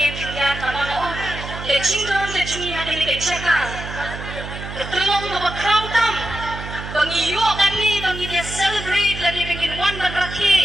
nama orang kecingdon kecungi hati ni kecakar Tyllong bawa keraudam bangiyo kami bangi dia celebrate lagi bangin wan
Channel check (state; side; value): noise; right; hum, 9 dB below the sound